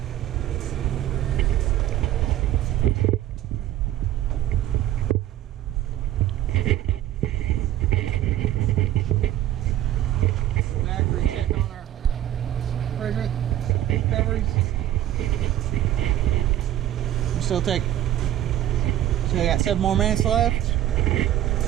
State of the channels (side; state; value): left; quieter; 12.8 dB